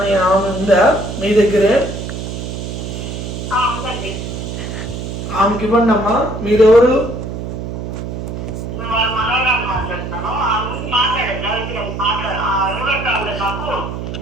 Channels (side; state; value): right; noise; hum, 6 dB below the sound